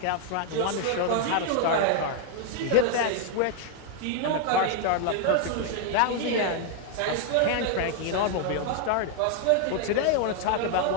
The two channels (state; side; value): different; both; correlation 0.00